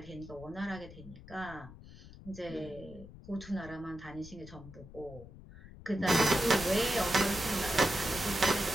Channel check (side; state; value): left; noise; rumble, 17 dB below the sound